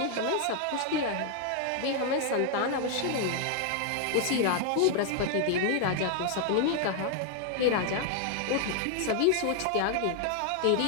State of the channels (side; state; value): both; different; correlation 0.00